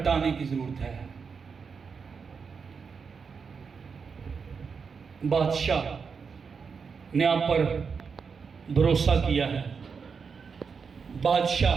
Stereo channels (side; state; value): left; quieter; 5.7 dB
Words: کی ضرورت ہے۔ بادشاہ نے آپ پر بھروسہ کیا ہے،